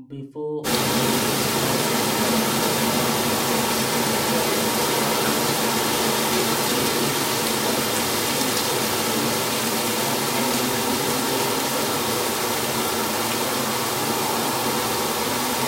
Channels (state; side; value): identical; both; correlation 1.00